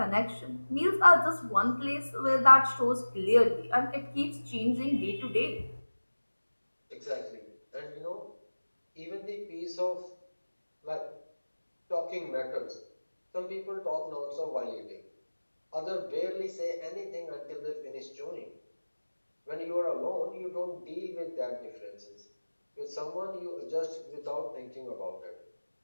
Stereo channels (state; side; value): inverted; both; correlation -1.00